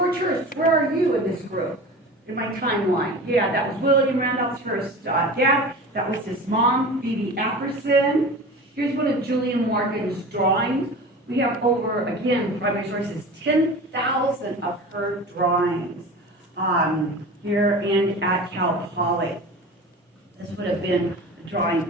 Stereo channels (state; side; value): normal; both; correlation 0.34